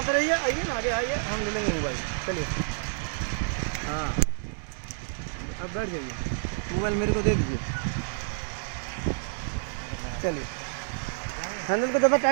रहिए। आइए ना, आगे आइए, हम ले लेंगे मोबाइल। चलिए हाँ, अब बैठ जाइए, मोबाइल मेरे को दे दीजिए। चलिए, हैंडल को ज़्यादा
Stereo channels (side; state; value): left; silent; 59 dB below the other